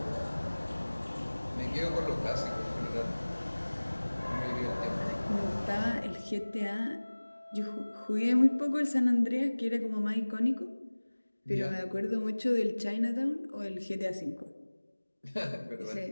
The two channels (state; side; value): inverted; both; correlation -1.00